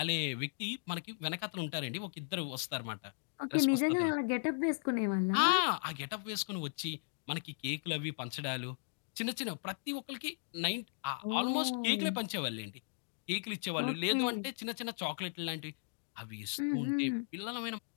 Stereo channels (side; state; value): right; silent; digital silence